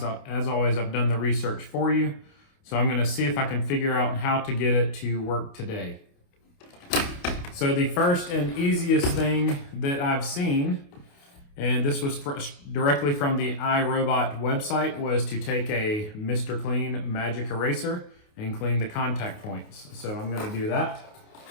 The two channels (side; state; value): right; late; 28 ms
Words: As always, I've done the research for you. So I'm gonna see if I can figure out how to get it to work today. So the first and easiest thing that I've seen, and this was directly from the iRobot website, was to take a Mr. Clean magic eraser and clean the contact points. So I'm gonna do that.